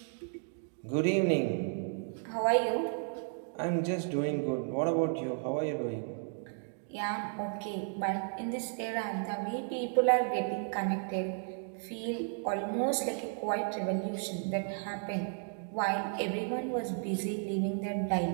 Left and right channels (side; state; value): left; silent; 55 dB below the other